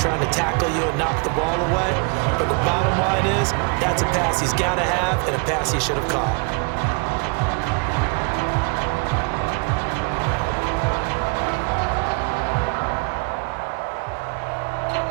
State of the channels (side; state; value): left; quieter; 34.9 dB